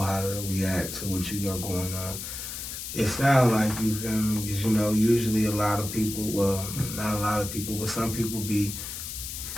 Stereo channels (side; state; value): left; noise; hiss, 7 dB below the sound